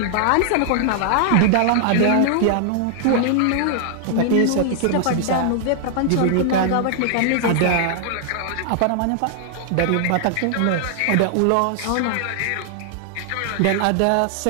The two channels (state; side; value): different; both; correlation -0.01